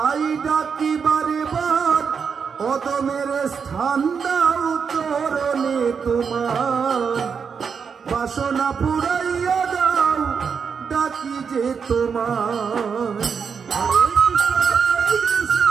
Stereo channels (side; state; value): left; quieter; 6.2 dB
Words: ডাকি বারে বার অধমের স্থান দাও চরণে তোমার বাসনা পুরাইয়া দাও ডাকি যে তোমার